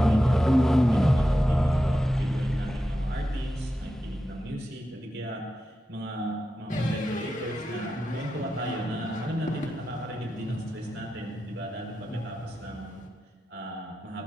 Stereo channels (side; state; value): both; normal; correlation 0.90